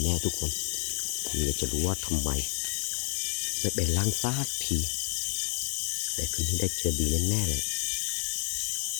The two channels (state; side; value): silent; right; digital silence